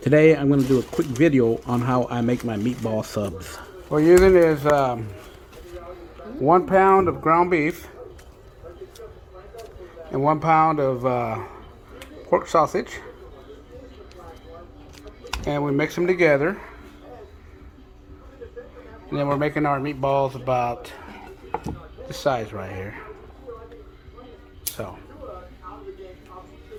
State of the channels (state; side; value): identical; both; correlation 1.00